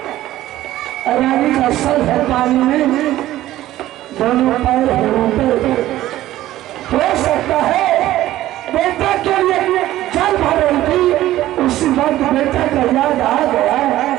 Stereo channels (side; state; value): left; quieter; 14.7 dB